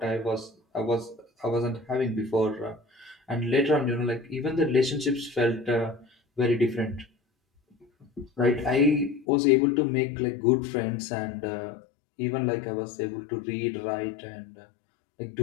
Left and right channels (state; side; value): drops out; right; at 9.2 s